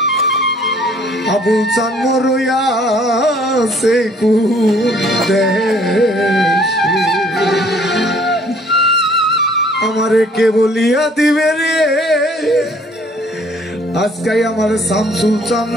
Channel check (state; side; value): normal; both; correlation 0.59